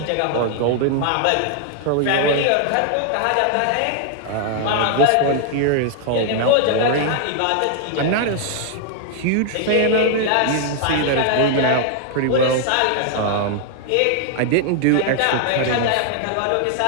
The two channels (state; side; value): different; both; correlation 0.00